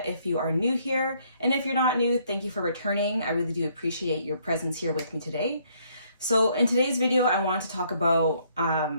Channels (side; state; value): both; inverted; correlation -0.67